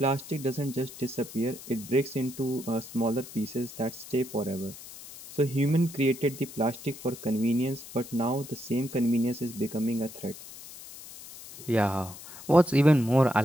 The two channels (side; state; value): left; noise; hiss, 15 dB below the sound